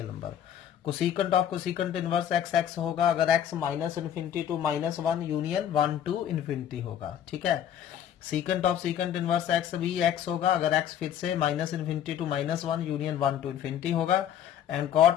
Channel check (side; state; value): right; quieter; 9.9 dB